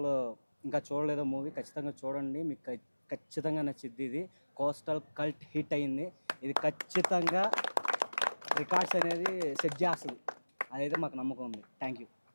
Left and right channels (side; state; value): both; inverted; correlation -1.00